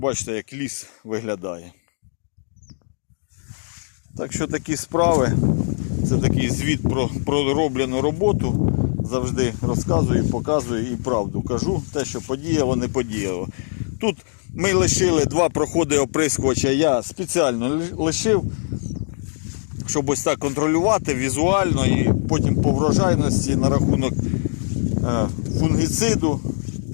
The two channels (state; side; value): silent; right; digital silence